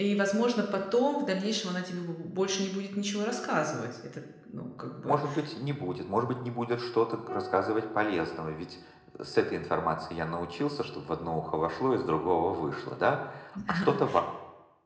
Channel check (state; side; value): identical; both; correlation 1.00